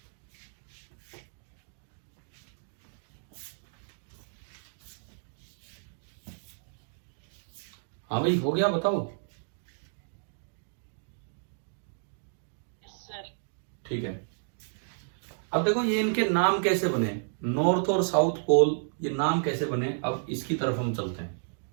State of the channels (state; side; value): silent; left; digital silence